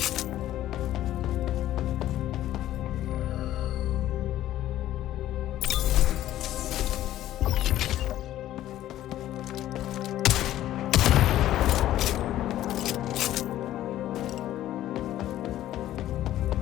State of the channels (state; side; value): quieter; right; 13.3 dB